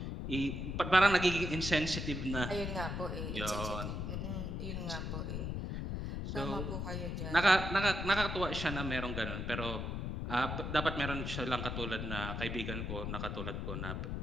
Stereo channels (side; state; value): left; noise; rumble, 3 dB below the sound